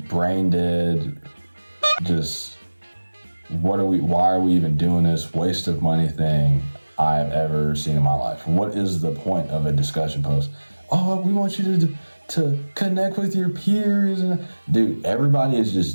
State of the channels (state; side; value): inverted; both; correlation -1.00